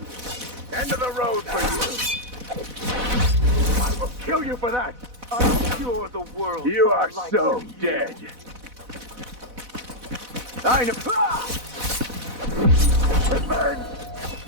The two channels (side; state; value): left; late; 4.1 ms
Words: End of the road for you! I will kill you for that! I'm sure the world. You are so dead! I know. Revenge!